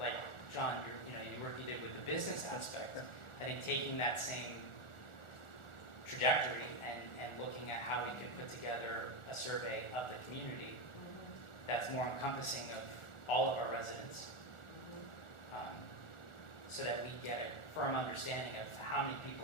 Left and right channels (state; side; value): late; right; 1.4 ms